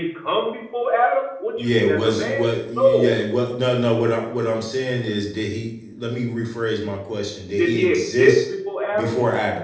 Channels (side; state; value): both; identical; correlation 1.00